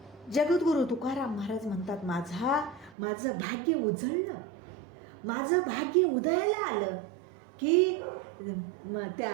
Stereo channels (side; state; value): left; drops out; at 3.0 s